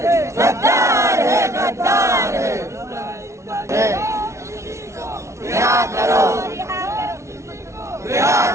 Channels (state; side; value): late; left; 0.14 ms